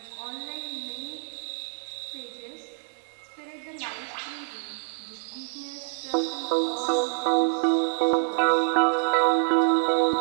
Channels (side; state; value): left; silent; 57 dB below the other